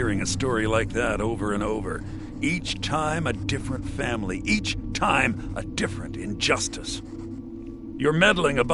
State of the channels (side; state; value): both; identical; correlation 1.00